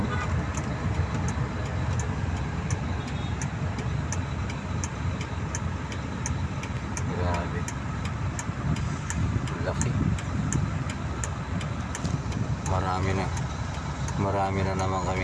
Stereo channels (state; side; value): identical; both; correlation 1.00